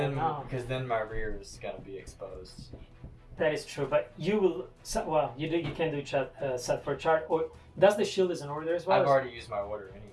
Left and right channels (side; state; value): both; identical; correlation 1.00